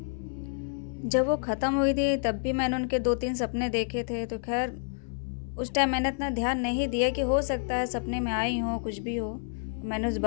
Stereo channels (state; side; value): silent; right; 59 dB below the other